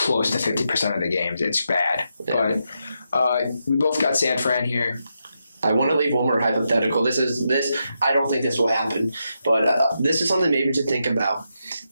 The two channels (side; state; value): both; inverted; correlation -0.84